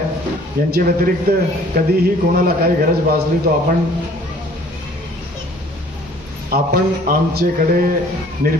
यांच्या व्यतिरिक्त कधीही कोणाला काही गरज भासली तो आपण आमच्याकडे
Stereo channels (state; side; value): normal; both; correlation 0.54